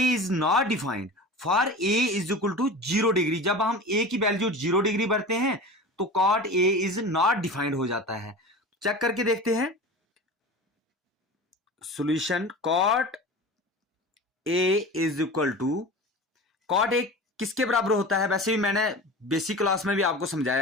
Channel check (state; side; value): normal; both; correlation 0.33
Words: is not defined for A is equal to 0 degree. जब हम ए की वैल्यू 0 डिग्री भरते हैं तो cot A is not defined हो जाता है। चेक करके देखते हैं solution. Cot A is equal to, cot A किसके बराबर होता है, वैसे भी मैंने बेसिक क्लास में भी आपको